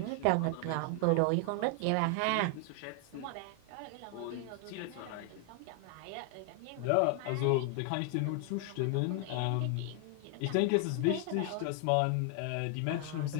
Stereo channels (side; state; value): both; different; correlation 0.00